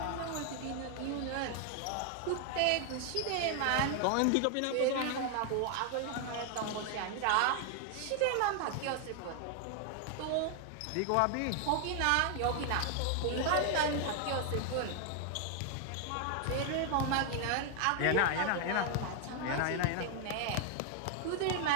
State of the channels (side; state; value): both; different; correlation 0.00